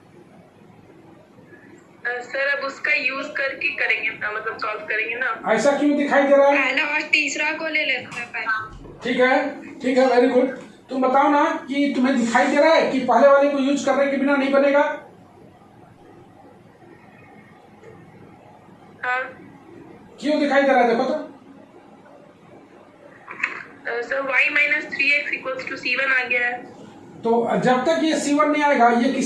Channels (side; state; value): both; identical; correlation 1.00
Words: सर अब उसका यूज करके करेंगे, मतलब सॉल्व करेंगे ना। ऐसा क्यों दिखाई दे रहा है? पहला और तीसरा को ले लेते हैं पहले। ठीक है, वेरी गुड। तुम बताओ ना कि तुम्हें दिखाई दे रहा है कि पहले वाले को यूज करने के बिना नहीं बनेगा? हाँ। क्यों दिखाई दे रहा है? देखो तो। Sir y minus 3x equals to C1 आ गया है। तो जब तक ये C1 नहीं आएगा ये